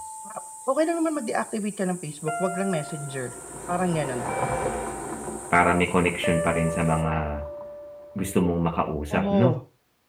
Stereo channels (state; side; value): identical; both; correlation 1.00